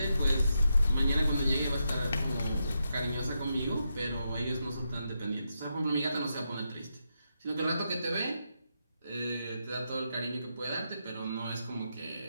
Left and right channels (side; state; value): both; inverted; correlation -0.84